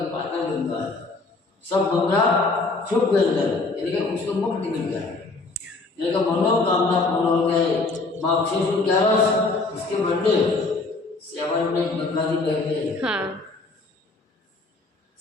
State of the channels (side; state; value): right; quieter; 3.5 dB